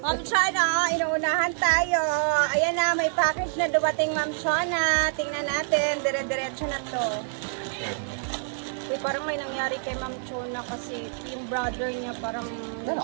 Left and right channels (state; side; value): silent; left; digital silence